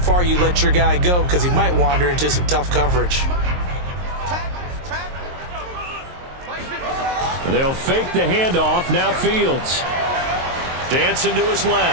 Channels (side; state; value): left; late; 23 ms